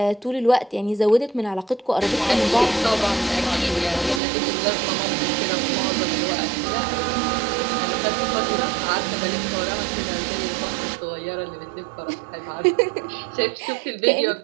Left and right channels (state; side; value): drops out; left; at 4.2 s